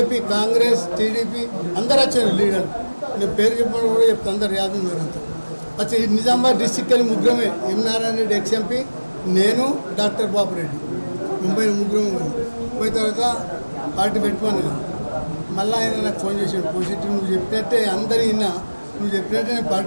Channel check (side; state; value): both; inverted; correlation -1.00